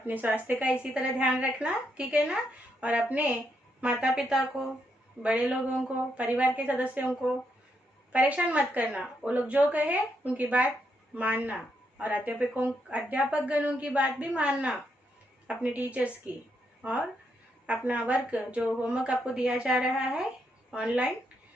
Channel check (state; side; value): normal; both; correlation 0.79